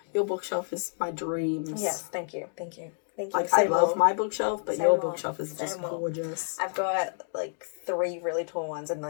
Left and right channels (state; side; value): silent; right; 59 dB below the other